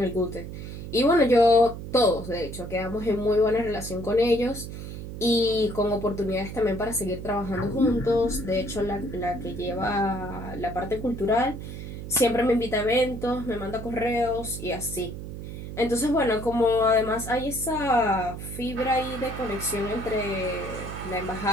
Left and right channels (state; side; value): noise; right; hum, 9 dB below the sound